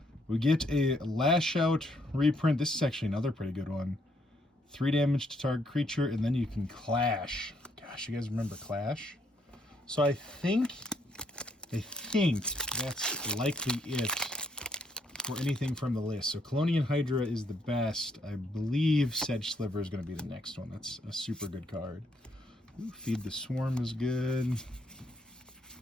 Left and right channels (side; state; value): both; normal; correlation 0.72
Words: We get a Lash Out reprint. This is actually another pretty good one. 3 damage to target creature, and then you can Clash. Gosh, you guys remember Clash? So I think that's likely it for anything from the list. So Clonian Hydra is the best. I believe Sedge Sliver is going to be the next one. That's a super good card. Ooh, Feed the Swarm is good.